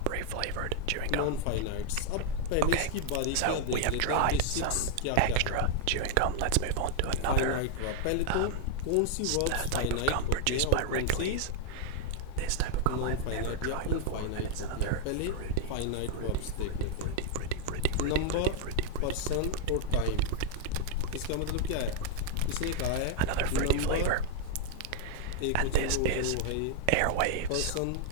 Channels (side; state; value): both; different; correlation 0.00